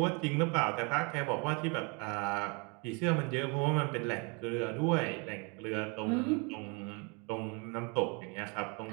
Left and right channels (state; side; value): quieter; left; 32.5 dB